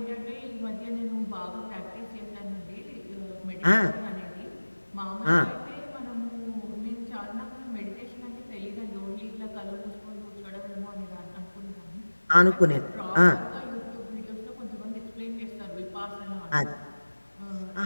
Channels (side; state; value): both; inverted; correlation -1.00